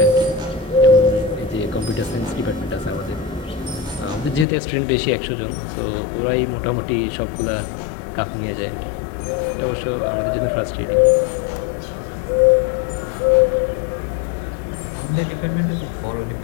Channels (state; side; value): drops out; right; at 4.5 s